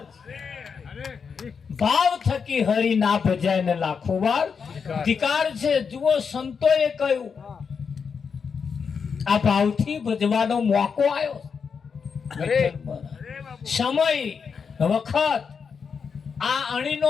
ભાવ થકી હરી ના ભજાય ને લાખો વાર ધિકાર છે જુઓ સંતોએ કહ્યું આ ભાવથી ભજવાનો મોકો આવ્યો સમય વખત આ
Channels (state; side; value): quieter; right; 6.0 dB